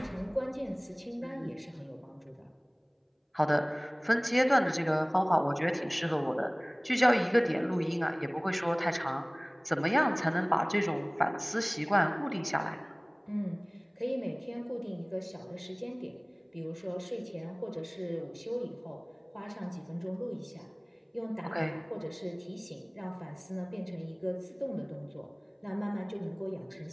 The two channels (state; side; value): identical; both; correlation 1.00